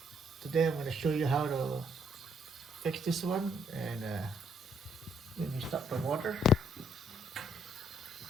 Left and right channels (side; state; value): both; normal; correlation 0.70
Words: today I'm going to show you how to fix this one. And when you stop the water,